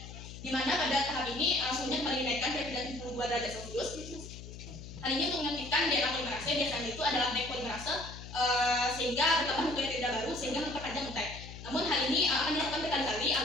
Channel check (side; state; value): left; noise; hum, 13 dB below the sound